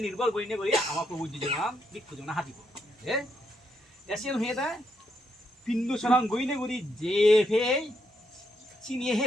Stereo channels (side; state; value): both; normal; correlation 0.78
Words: নির্ভর করি করি আমার প্রভু জীবন বিক্ষু জীবন হাতিব এসিয়ান হয়ে দেয় পিন্দু সরং গইনে গুড়ি যে ফে চিনিয়ে